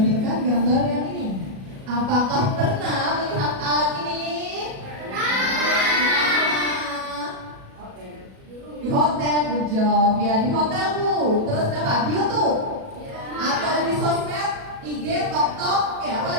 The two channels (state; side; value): late; left; 37 ms